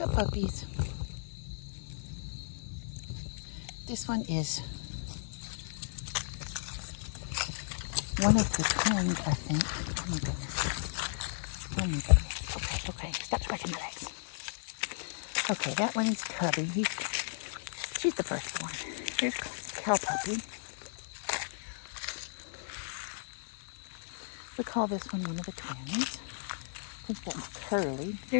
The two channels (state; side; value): silent; right; digital silence